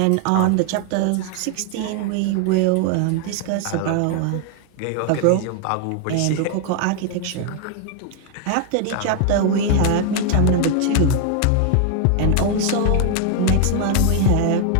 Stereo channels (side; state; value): both; different; correlation 0.00